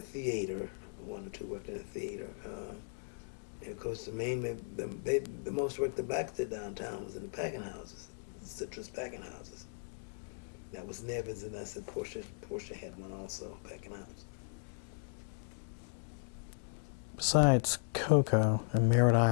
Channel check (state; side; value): silent; right; digital silence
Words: One or two worked in the theater. And of course, mainly the most work the blacks did downtown was in the packing houses, the citrus packing houses. That was Nevins, and I said Portia had one also, packing house. Besides Cocoa and Merritt